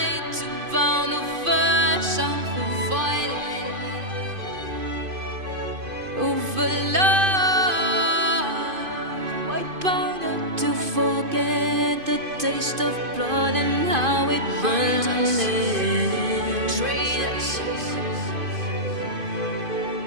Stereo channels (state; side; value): late; left; 2.5 ms